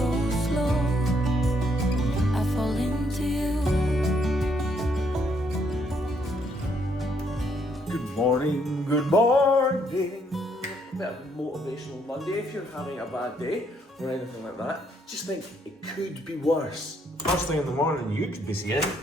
slow. I fall into you. Good morning, good morning. Bit of motivational Monday if you're having a bad day or anything like that. Just think it could be worse. First thing in the morning you could be seeing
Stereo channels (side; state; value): both; normal; correlation 0.71